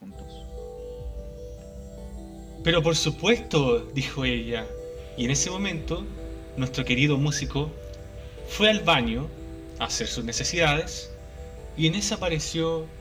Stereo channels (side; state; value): both; identical; correlation 1.00